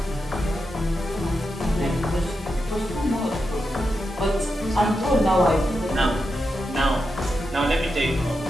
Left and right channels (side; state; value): both; normal; correlation 0.87